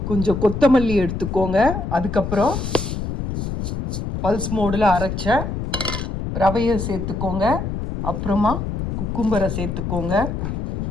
கொஞ்சம் கொத்தமல்லி எடுத்துக்கோங்க. அதுக்கப்புறம் பல்ஸ் மோடில் அரைச்ச ரவையை சேர்த்துக்கோங்க. அப்புறமா குக்கும்பரை சேர்த்துக்கோங்க.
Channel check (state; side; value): noise; left; rumble, 4 dB below the sound